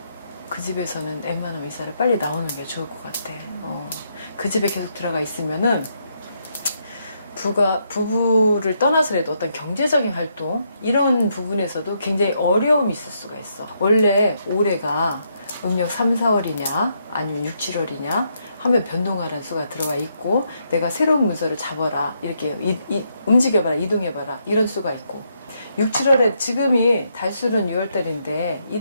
그 집에서는 웬만하면 이사를 빨리 나오는 게 좋을 것 같아. 그 집에 계속 들어가 있으면은 부부를 떠나서라도 어떤 경제적인 활동 이런 부분에서도 굉장히 어려움이 있을 수가 있어. 원래 올해가 음력 3, 4월이냐 아니면 6, 7월이냐 하면 변동하라는 수가 들어가 있고 내가 새로운 문서를 잡아라 이렇게 움직여봐라 이동해봐라 이런 수가 있고 6, 7월에 지금이 달수는 6월달인데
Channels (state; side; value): inverted; both; correlation -0.77